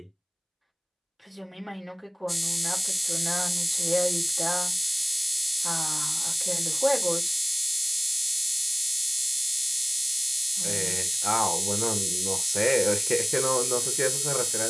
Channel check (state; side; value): identical; both; correlation 1.00